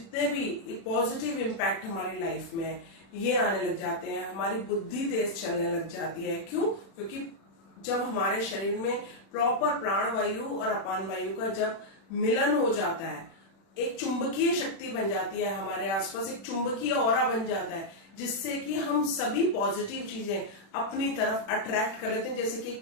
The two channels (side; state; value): right; late; 36 ms